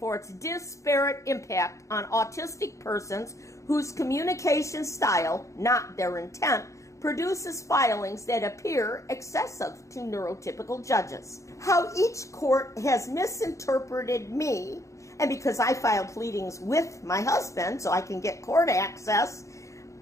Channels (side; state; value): right; late; 0.15 ms